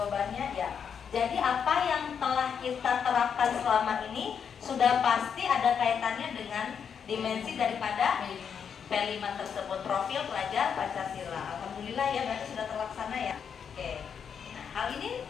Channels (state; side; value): quieter; right; 7.2 dB